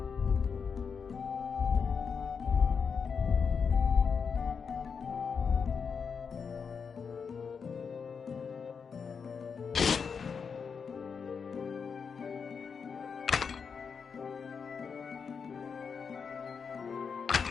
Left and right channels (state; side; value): quieter; right; 6.0 dB